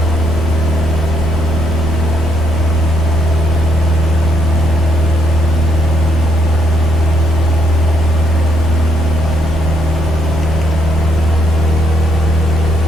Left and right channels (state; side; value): normal; both; correlation 0.73